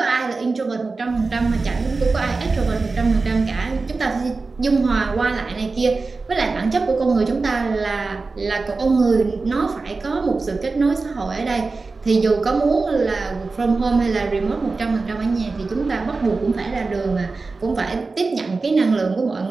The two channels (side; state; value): left; quieter; 3.9 dB